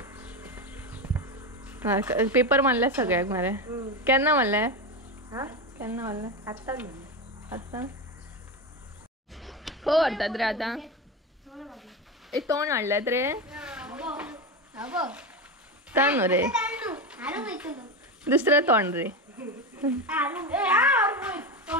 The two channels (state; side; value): normal; both; correlation 0.17